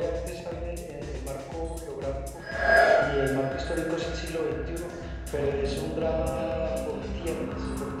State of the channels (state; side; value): identical; both; correlation 1.00